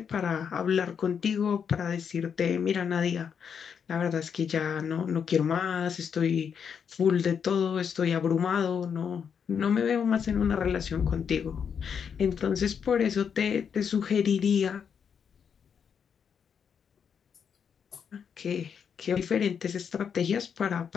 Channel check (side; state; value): right; quieter; 7.1 dB